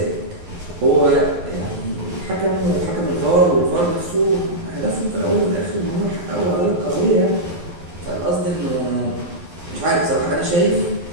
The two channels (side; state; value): left; late; 11 ms